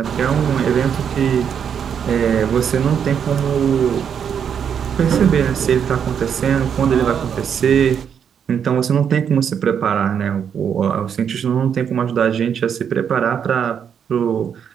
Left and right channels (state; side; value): quieter; left; 7.8 dB